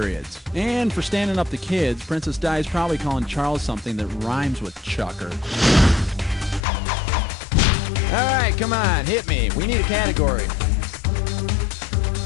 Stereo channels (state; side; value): drops out; right; at 6.6 s